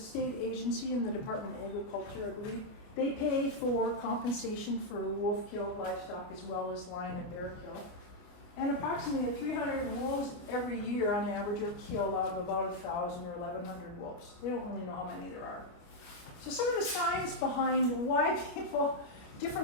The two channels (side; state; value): right; late; 29 ms